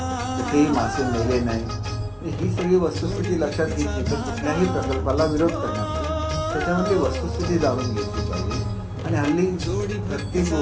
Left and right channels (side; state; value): both; identical; correlation 1.00